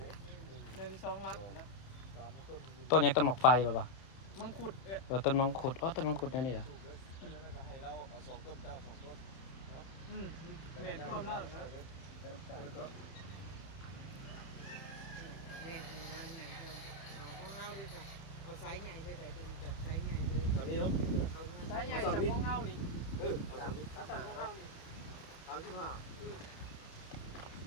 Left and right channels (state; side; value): late; right; 31 ms